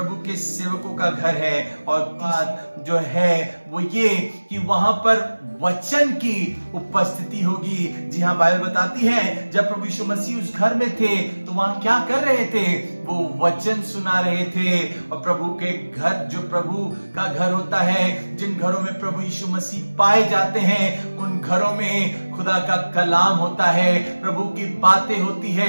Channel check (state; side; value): inverted; both; correlation -1.00